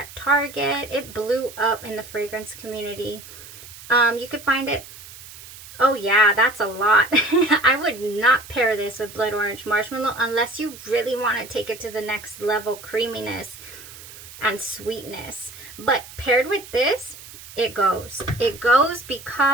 Target. It blew up in the fragrance community. You could find it. Oh yeah, that's a lot. I would not pair this with Blood Orange Marshmallow unless you really want to take it to the next level creaminess and sweetness. But paired with this, it goes. It goes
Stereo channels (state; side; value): noise; right; hiss, 17 dB below the sound